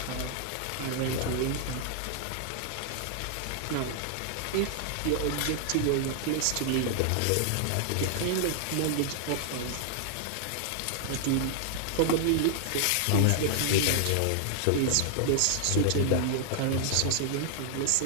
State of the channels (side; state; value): both; different; correlation 0.00